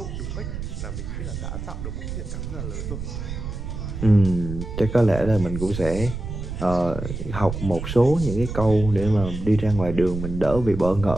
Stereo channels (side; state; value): right; noise; rumble, 7 dB below the sound